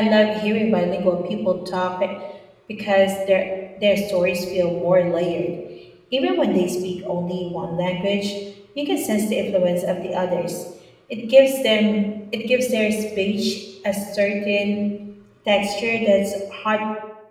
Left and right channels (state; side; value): identical; both; correlation 1.00